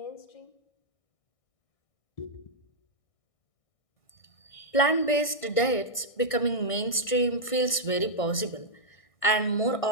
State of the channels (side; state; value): right; late; 1.6 ms